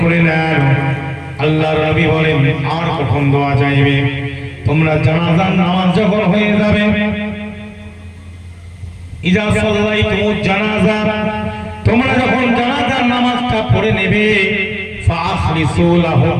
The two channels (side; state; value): both; identical; correlation 1.00